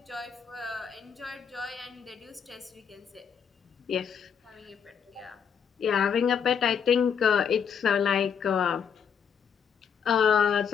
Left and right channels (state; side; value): quieter; right; 7.3 dB